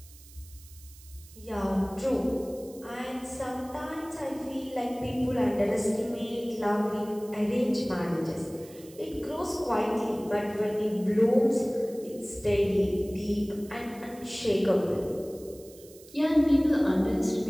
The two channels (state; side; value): noise; right; hiss, 22 dB below the sound